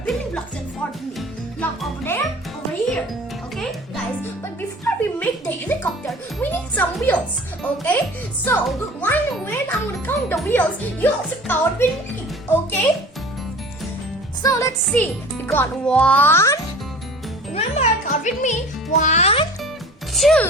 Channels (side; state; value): both; normal; correlation 0.43